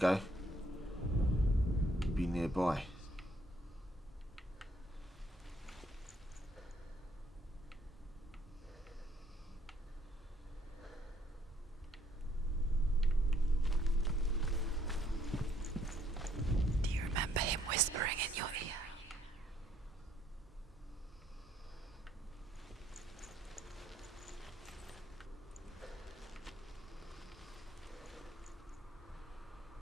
Be nearby. Do you remember him whispering in your ear?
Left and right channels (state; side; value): normal; both; correlation 0.67